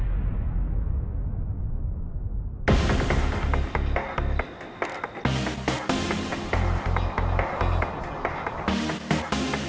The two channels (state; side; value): identical; both; correlation 1.00